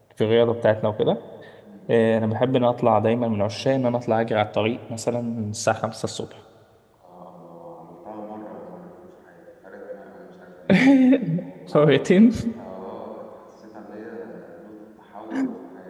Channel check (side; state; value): both; identical; correlation 1.00